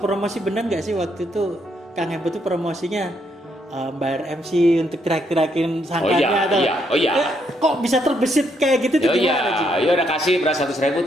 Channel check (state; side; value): normal; both; correlation 0.74